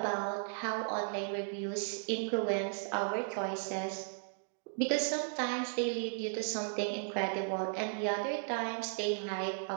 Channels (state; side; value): silent; left; digital silence